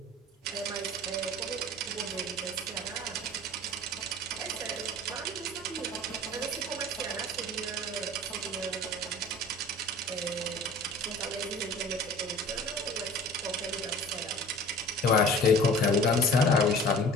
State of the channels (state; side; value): normal; both; correlation 0.43